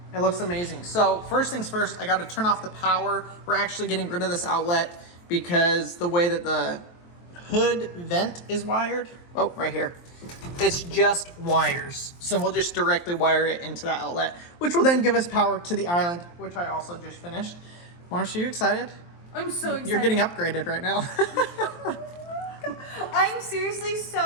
It looks amazing. So first things first, I got to turn off the power. We're actually getting rid of this outlet because the way that the hood vent is wired, oh, right here, it's just wires. So we'll just directly wire it into that outlet, which will then give us power to the island, which I also just finished. Marcia, are you excited? I'm so excited. You're getting upgraded right now. I'm seriously so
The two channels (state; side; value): late; right; 23 ms